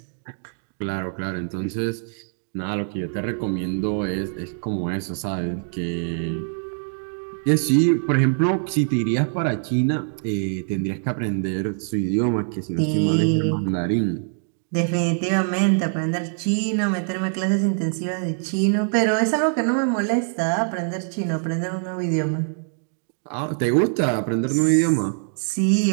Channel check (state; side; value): silent; left; digital silence